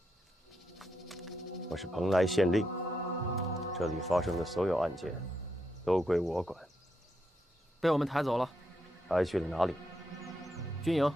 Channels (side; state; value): both; normal; correlation 0.82